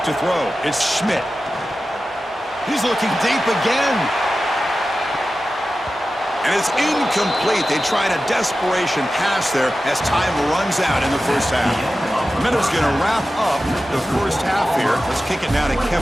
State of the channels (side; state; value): both; normal; correlation 0.94